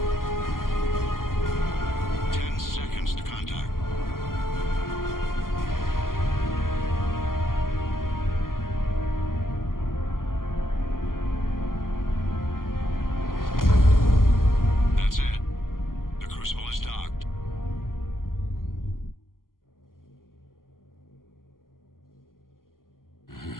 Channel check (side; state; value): right; late; 0.91 ms